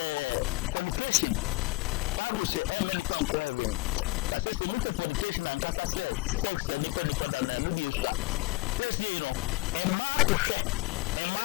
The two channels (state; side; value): quieter; right; 22.8 dB